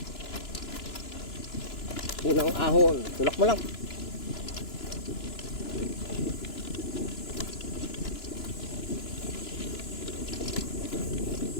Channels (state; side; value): late; right; 2.9 ms